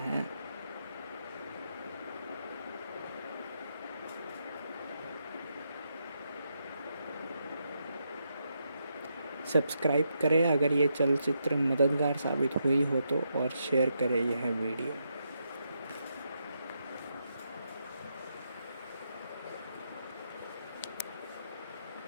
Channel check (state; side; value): inverted; both; correlation -0.81